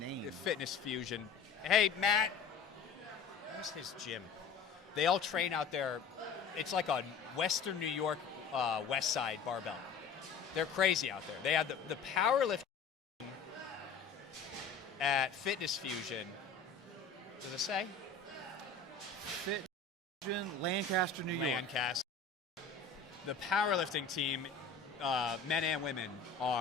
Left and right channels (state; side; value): quieter; right; 5.4 dB